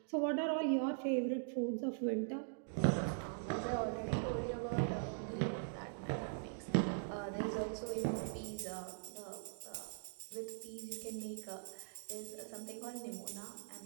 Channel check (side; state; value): left; silent; digital silence